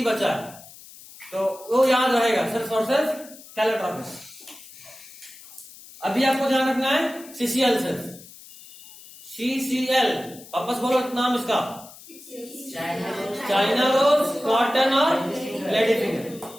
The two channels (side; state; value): left; noise; hiss, 19 dB below the sound